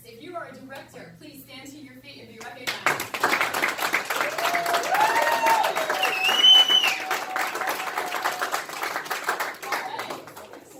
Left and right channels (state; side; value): identical; both; correlation 1.00